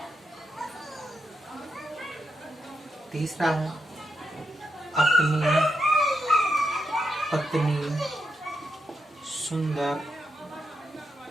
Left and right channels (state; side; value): normal; both; correlation 0.83